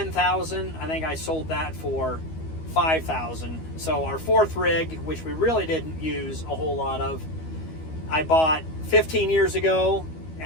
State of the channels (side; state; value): right; late; 12 ms